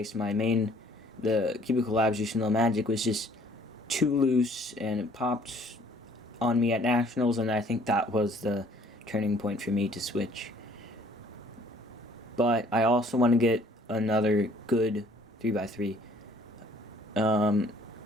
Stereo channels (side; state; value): both; normal; correlation 0.58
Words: My main, the Cubicle Labs Yushin Low Magic, was just too loose and it popped on me at nationals, and I think that was the turning point for me to switch. But I also want to get another good 3x3.